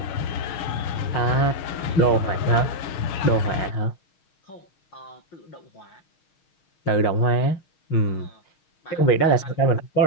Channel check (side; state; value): right; late; 6.4 ms